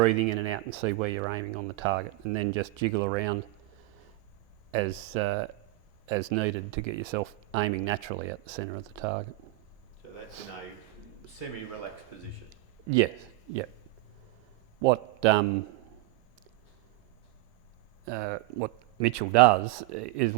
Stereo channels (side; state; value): left; quieter; 19.2 dB